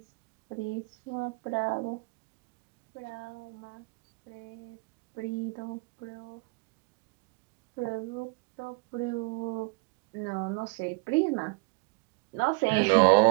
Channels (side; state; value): left; quieter; 29.8 dB